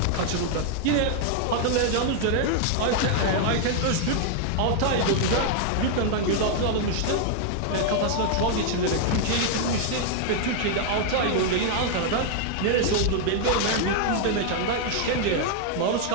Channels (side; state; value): both; different; correlation 0.00